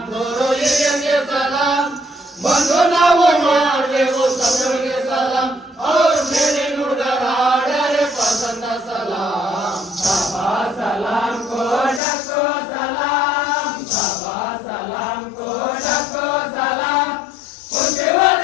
ಗುರು ಹಿರಿಯರಿಗೆ ಸಲಾಂ, ಬಂದು ನಾವು ಮಾಡಬೇಕು ಸಭೆಗೆ ಸಲಾಂ, ಅವ್ರ ಮೇಲೆ ನುಡಿದರಾಡರೆ ಪಸಂದ ಸಲಾಂ. ಸಭಾ ಸಲಾಂ ಕೋಟಕೋ ಸಲಾಂ, ಸಭಾ ಸಲಾಂ ಕೋಟಕೋ ಸಲಾಂ, ಹುಟ್ಟಿರುವ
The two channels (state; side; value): drops out; right; at 12.0 s